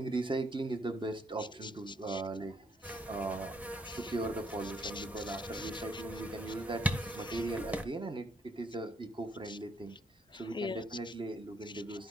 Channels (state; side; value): normal; both; correlation 0.71